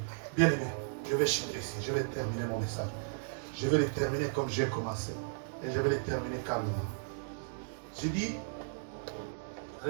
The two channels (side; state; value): left; silent; digital silence